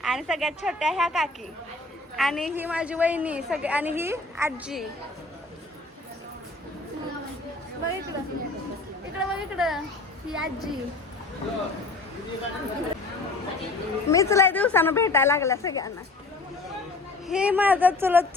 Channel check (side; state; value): right; quieter; 3.2 dB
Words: आणि सगळ्यात छोट्या ह्या काकी. आणि ही माझी वहिनी सगळे. आणि ही आजी. बघ इकडं, इकडं बघ इकडं, ही आजी. मीच लय दिवसानं भेटायला लागल्या सगळ्यांना. हे माझं